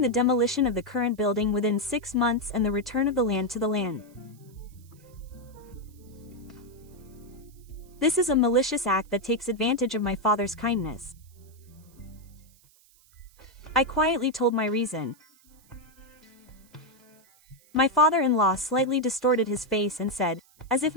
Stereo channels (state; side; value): noise; right; hiss, 29 dB below the sound